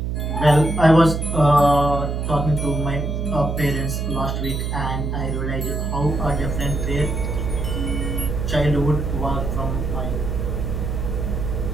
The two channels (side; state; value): right; noise; hum, 2 dB below the sound